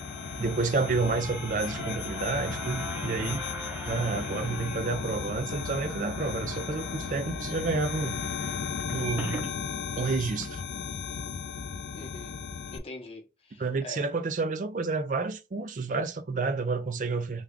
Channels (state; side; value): normal; both; correlation 0.41